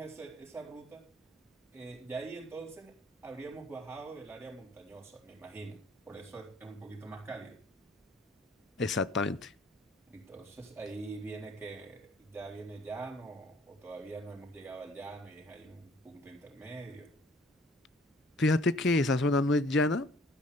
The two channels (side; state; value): both; normal; correlation 0.56